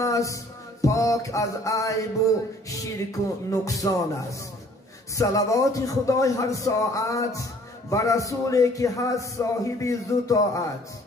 پاک از عیب و شرک و نقصان است. صلوات خدای هر ساعت بر رسولی که هست صاحب ذو طاعت.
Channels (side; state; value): both; normal; correlation 0.56